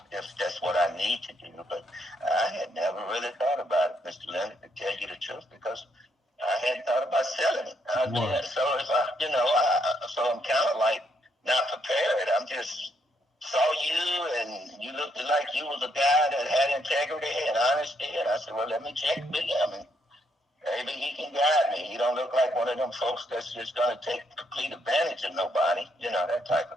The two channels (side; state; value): both; normal; correlation 0.74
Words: if that's what I need to do. But I had never really thought about it, Mr. Leonard, to tell you the truth, because I hadn't thought about selling it. So if so I'm kind of like not prepared. I'm just saw you and you looked like you was a guy that had integrity and honesty, and I said, well, let me check with him and maybe he can guide me. You don't look like one of them folks that's just going to take complete advantage of nobody, that type